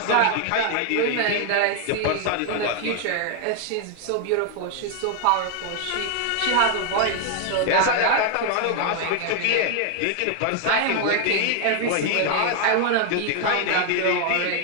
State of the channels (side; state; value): both; different; correlation 0.00